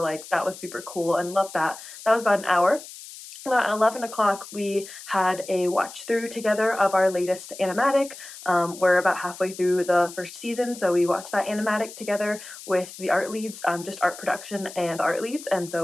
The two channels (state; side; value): noise; left; hiss, 15 dB below the sound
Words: that was super cool and loved that. That was about an hour. At 11 o'clock, we had a watch through together of our latest animatic. We're about halfway through the first season, so we watched that animatic together with the art leads, just art production and art leads, and